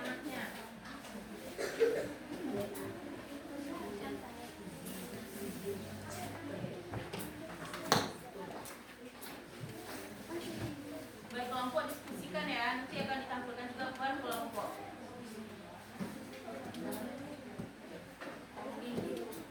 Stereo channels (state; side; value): identical; both; correlation 1.00